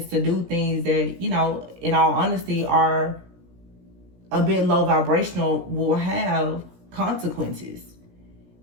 to do things that, in all honesty, are a bit low vibrational will have consequences.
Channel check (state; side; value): late; left; 17 ms